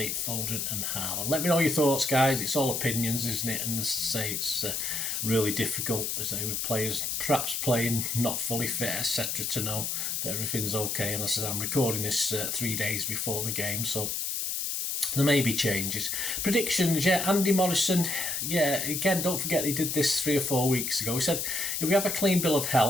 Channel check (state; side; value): noise; left; hiss, 1 dB below the sound